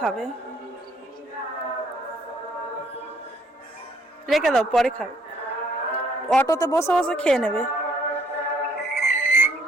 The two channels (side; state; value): both; normal; correlation 0.65